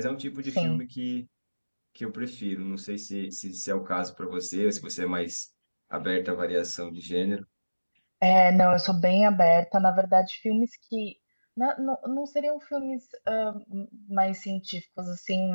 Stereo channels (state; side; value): inverted; both; correlation -1.00